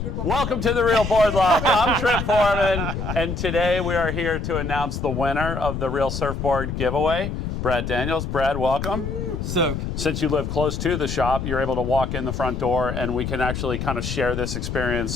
Welcome to the Real Board Loft. I'm Trip Forman, and today we are here to announce the winner of the Real Surfboard Giveaway, Brad Daniels. Brad, welcome. So, since you live close to the shop, you're able to walk in the front door, and we can actually kind of share this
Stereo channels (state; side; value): noise; left; rumble, 4 dB below the sound